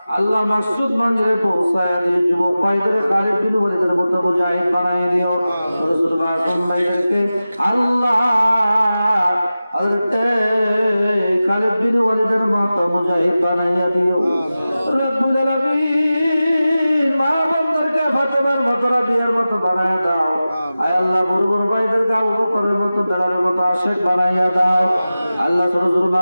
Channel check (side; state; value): both; inverted; correlation -0.95